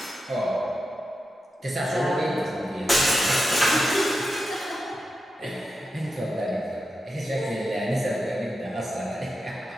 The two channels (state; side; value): normal; both; correlation 0.89